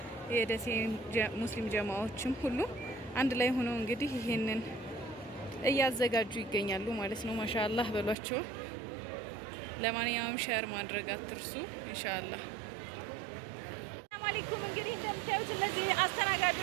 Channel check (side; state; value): left; drops out; at 8.2 s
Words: የደሴ ሙስሊም ጀማዓዎችም ሁሉ አንድ ላይ ሆነው እንግዲህ ይሄንን እያዘጋጁ ይገኛሉ ማለት ነው። ማሻአላህ በሏቸው። ለማንኛውም ሼር ማድረግ አትርሱ ኢንሻአላህ። አለይኩም እንግዲህ እንደምታዩት እነዚህ